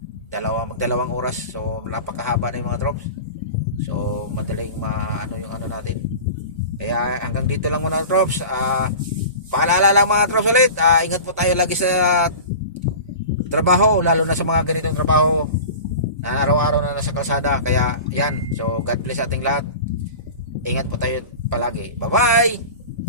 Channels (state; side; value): inverted; both; correlation -0.35